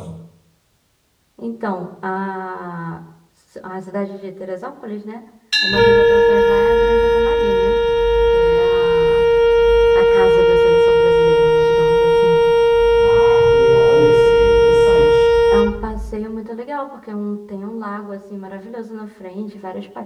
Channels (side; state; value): both; identical; correlation 1.00